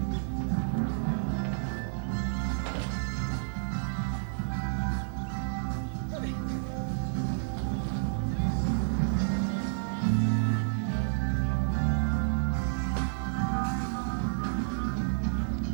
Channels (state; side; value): silent; left; 58 dB below the other